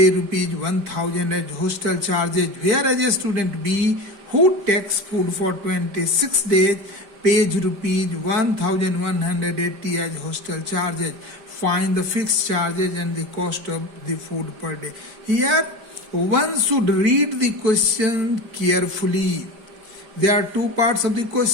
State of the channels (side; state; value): left; late; 5.0 ms